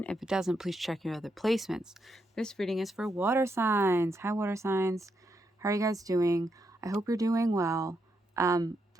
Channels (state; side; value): normal; both; correlation 0.81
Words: If it doesn't, please check your other placements. This reading is for water signs. Hi water signs. How are you guys doing? I hope you're doing well.